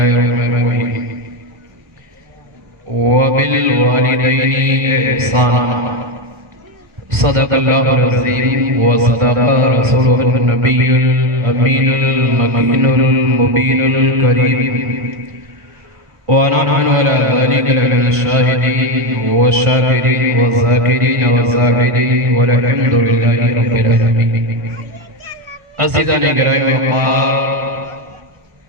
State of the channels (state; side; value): late; left; 1.6 ms